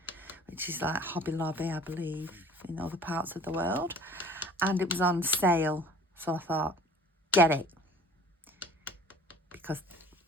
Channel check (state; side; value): normal; both; correlation 0.48